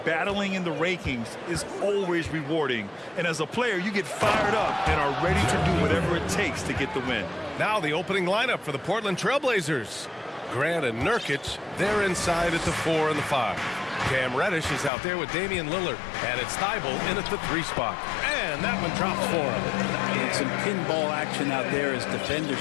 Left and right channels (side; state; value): right; drops out; at 14.9 s